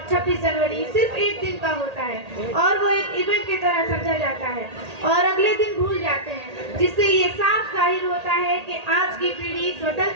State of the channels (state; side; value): late; left; 1.8 ms